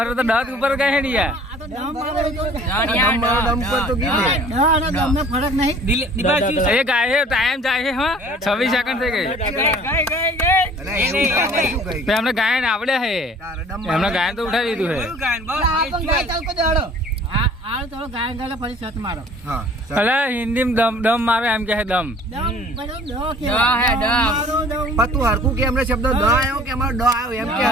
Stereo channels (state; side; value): normal; both; correlation 0.50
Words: તો દાંત ઉપર કઈ હેડી યાર. દમ મારો દમ પર તો કીધે દીપાન શું છે? એ ગાય છે ટાઈમ જાય છે. હા 26 સેકન્ડ થઈ ગઈ. અરે એવું કામ શું કહી તો એમને ગાયન આવડે છે. તારે દમ એમને ગાયન તો ઉઠાવી દીધું છે. કયું ગાયન બોલ? એ શું છે? હા અલે હિન્દી દમ મારે એમ કે છે દમ. ડ હે ડ. પણ તું હરખું કે એમને શબ્દ દ આવ્યો કે અમારો ડ આવ્યો એમ કે